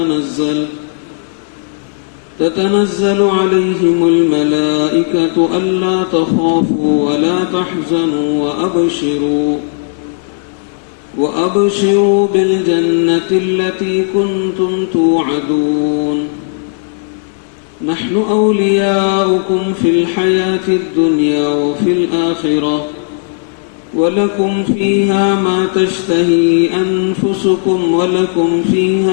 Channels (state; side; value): silent; right; digital silence